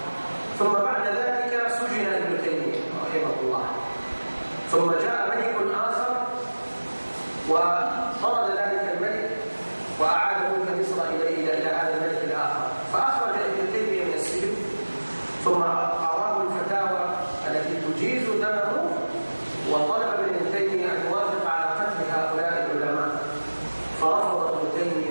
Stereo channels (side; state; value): both; inverted; correlation -1.00